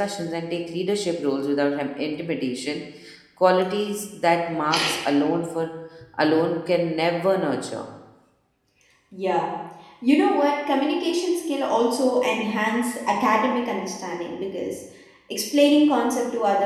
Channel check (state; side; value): identical; both; correlation 1.00